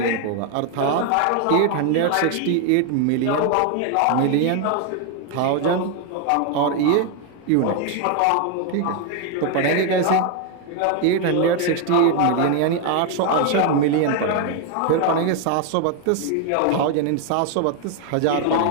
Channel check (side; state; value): both; different; correlation 0.01